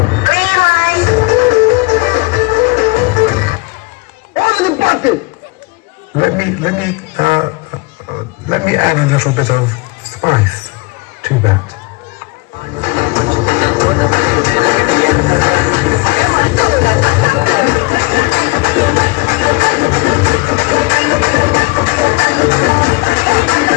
Let me add a little bit of spice to that.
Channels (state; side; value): quieter; right; 25.8 dB